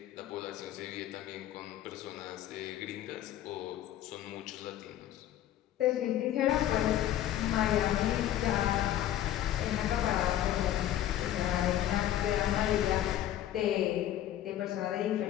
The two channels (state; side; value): quieter; right; 12.4 dB